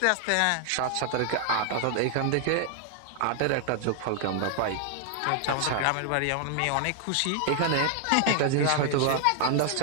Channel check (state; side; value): different; both; correlation 0.00